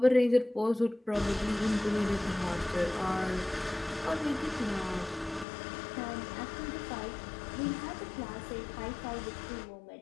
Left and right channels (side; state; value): right; drops out; at 5.5 s